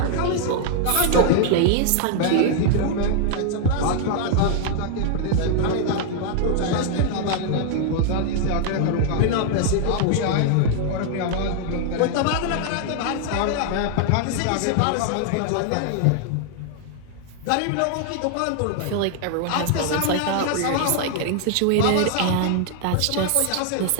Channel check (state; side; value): different; both; correlation 0.00